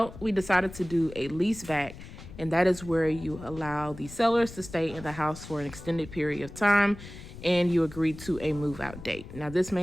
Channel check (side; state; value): left; noise; rumble, 15 dB below the sound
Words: we decided to do a lease back, and that is where you allow the sellers to stay in the house for an extended period of time and you agree to a move out date. Now, this